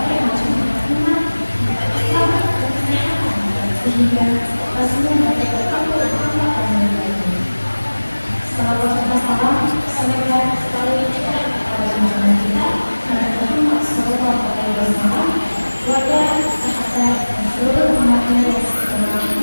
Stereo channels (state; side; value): inverted; both; correlation -1.00